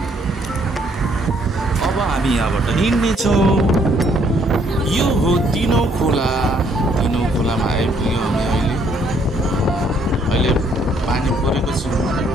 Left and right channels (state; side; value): normal; both; correlation 0.67